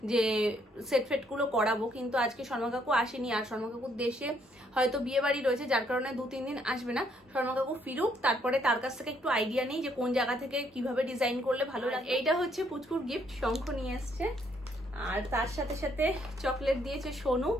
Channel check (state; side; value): normal; both; correlation 0.70